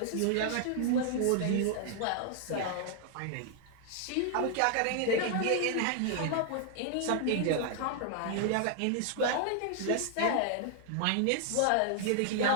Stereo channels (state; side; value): different; both; correlation 0.00